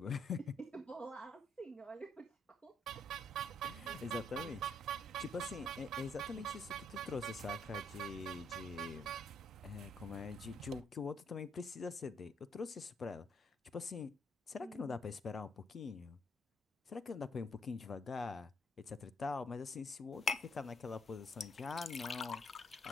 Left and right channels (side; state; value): both; normal; correlation 0.72